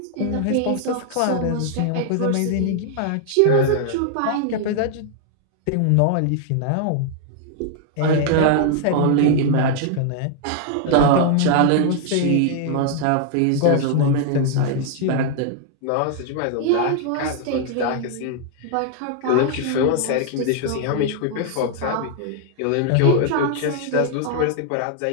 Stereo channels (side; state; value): both; different; correlation 0.00